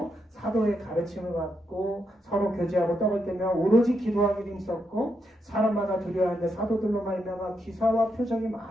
사도의 가르침을 받고 서로 교제하고 떡을 떼며 오로지 기도하기를 힘썼고 사람마다 두려워하는데 사도들로 말미암아 기사와 표적이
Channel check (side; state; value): both; normal; correlation 0.81